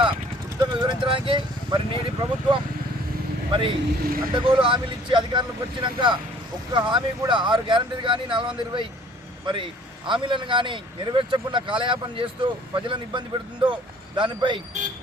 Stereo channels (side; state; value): both; normal; correlation 0.54